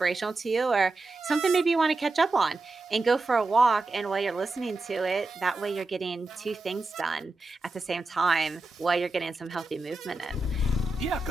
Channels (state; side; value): quieter; left; 3.1 dB